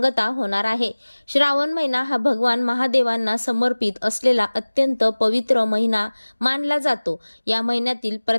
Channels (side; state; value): both; inverted; correlation -1.00